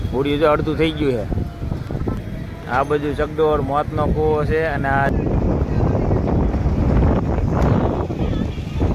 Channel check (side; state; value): both; identical; correlation 1.00